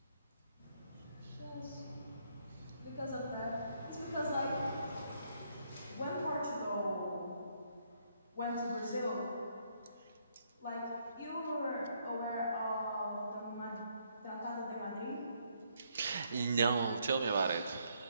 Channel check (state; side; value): inverted; both; correlation -0.72